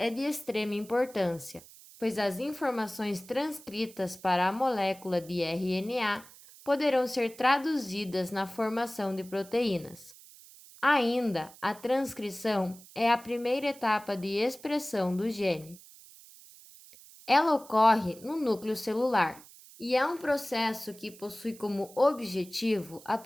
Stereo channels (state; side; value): noise; right; hiss, 21 dB below the sound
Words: de extrema importância, pois as informações transcritas para a molécula de RNA poderão ser traduzidas na formação de proteínas. Ainda, a transcrição é a primeira etapa de expressão do gene. Ela ocorre no núcleo celular e é um processo que possui como objetivo a